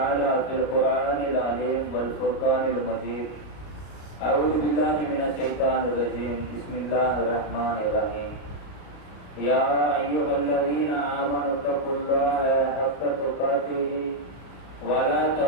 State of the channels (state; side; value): late; right; 33 ms